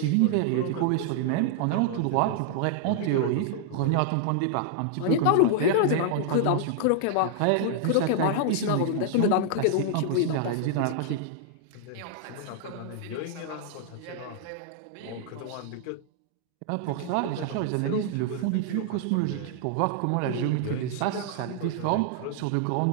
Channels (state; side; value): different; both; correlation -0.01